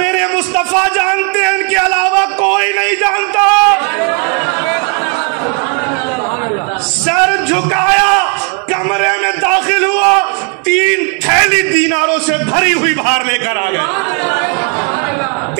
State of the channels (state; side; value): quieter; left; 35.1 dB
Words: مصطفیٰ جانتے ہیں، ان کے علاوہ کوئی نہیں جانتا۔ سر جھکایا، کمرے میں داخل ہوا، 3 تھیلی دیناروں سے بھری ہوئی باہر لے کر آ گئے،